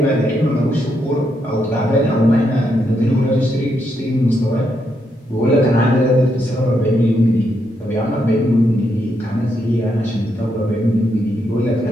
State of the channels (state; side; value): normal; both; correlation 0.79